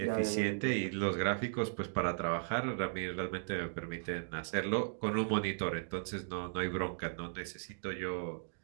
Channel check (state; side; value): silent; left; digital silence